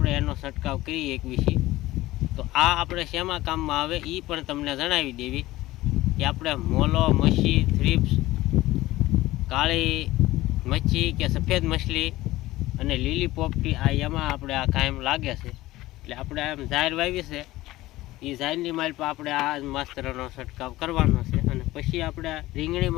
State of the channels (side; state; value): right; quieter; 17.4 dB